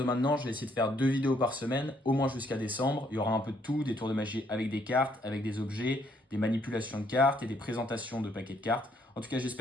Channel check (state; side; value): normal; both; correlation 0.69